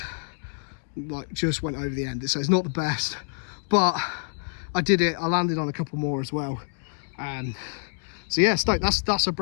just went over the end. So it's not the best, but I did it. I landed on a couple more as well. So yeah, stoked. That's a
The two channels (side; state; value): right; silent; digital silence